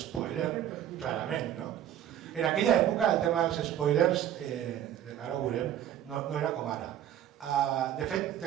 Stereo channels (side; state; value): left; quieter; 11.1 dB